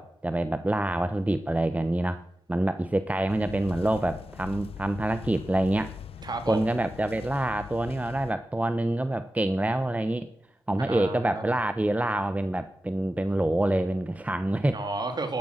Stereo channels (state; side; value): normal; both; correlation 0.93